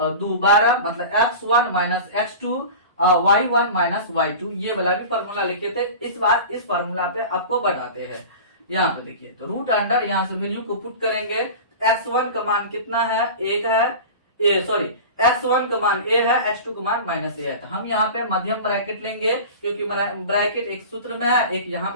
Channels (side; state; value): both; inverted; correlation -0.33